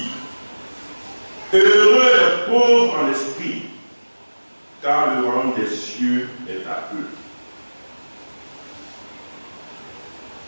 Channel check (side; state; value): both; inverted; correlation -1.00